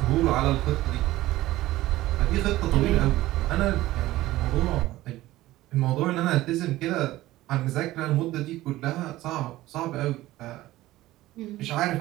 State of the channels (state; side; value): quieter; left; 16.5 dB